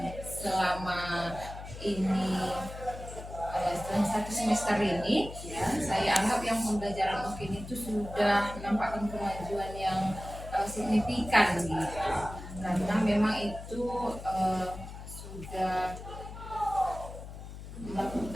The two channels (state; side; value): noise; left; hum, 12 dB below the sound